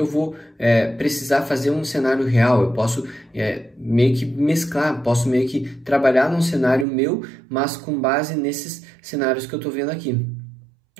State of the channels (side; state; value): left; drops out; at 6.9 s